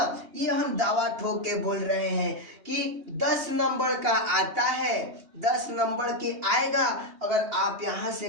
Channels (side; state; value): left; late; 3.1 ms